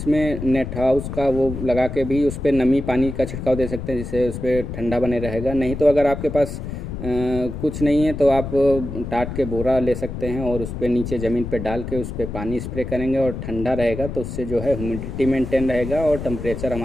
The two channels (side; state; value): left; noise; rumble, 7 dB below the sound